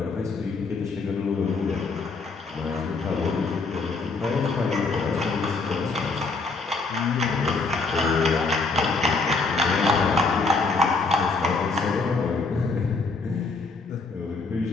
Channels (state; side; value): quieter; right; 4.0 dB